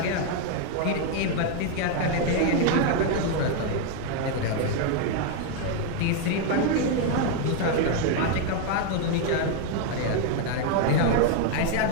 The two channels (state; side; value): different; both; correlation 0.00